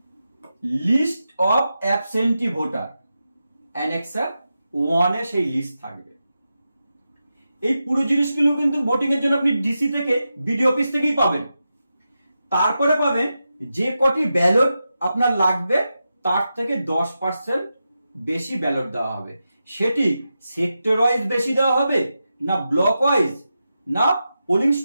List of absentee voter, annexure 1 এ সেই লিস্ট থাকবে। এই পুরো জিনিসগুলো কিন্তু ভোটিং এর জন্য আপনি ডিসি থেকে বিডিও অফিস থেকেই পাবেন। তারপরে পাবেন যে কটি ব্যালট আপনার লাগবে তার থেকে 10% বেশি ব্যালট দেওয়া হবে। সেটি সেক্টর ওয়াইজ বেশি দেওয়া হবে না ব্লক ওয়াইজ না পোলিং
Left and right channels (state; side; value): inverted; both; correlation -0.90